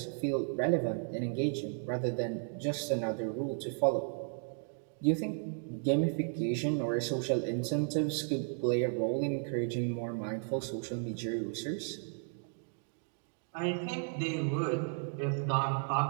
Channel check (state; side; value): silent; left; 55 dB below the other